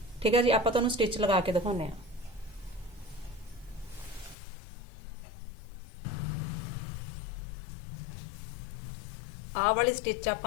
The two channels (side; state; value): right; drops out; at 4.4 s